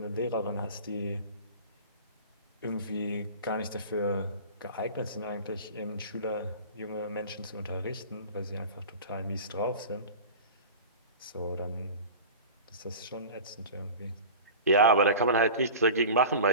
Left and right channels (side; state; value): both; inverted; correlation -0.36